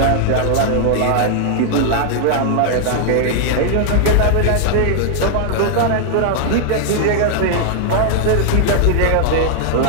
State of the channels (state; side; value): different; both; correlation -0.01